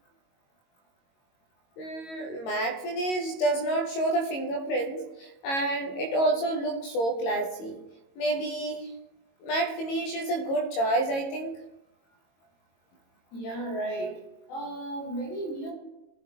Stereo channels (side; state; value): right; late; 22 ms